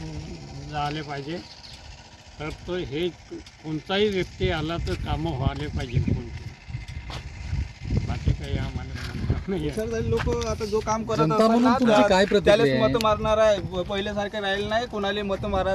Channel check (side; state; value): both; identical; correlation 1.00